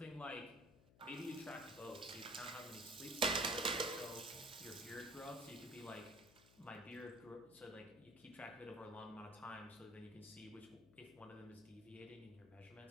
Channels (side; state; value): left; noise; hum, 22 dB below the sound